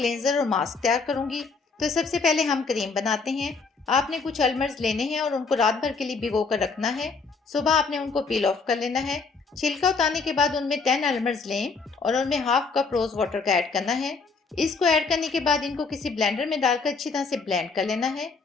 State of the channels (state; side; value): quieter; right; 4.6 dB